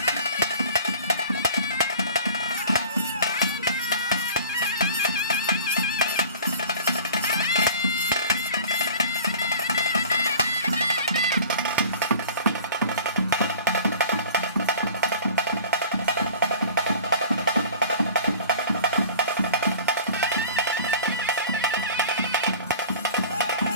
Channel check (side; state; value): both; inverted; correlation -0.44